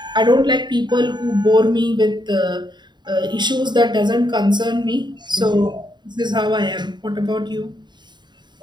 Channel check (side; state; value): left; late; 0.21 ms